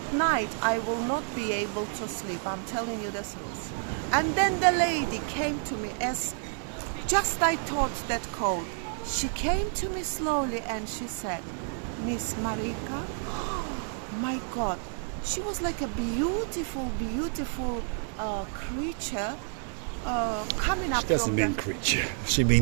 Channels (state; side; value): silent; left; 56 dB below the other